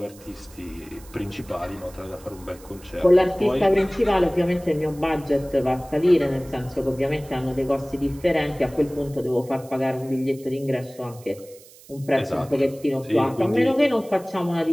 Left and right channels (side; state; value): right; noise; hiss, 23 dB below the sound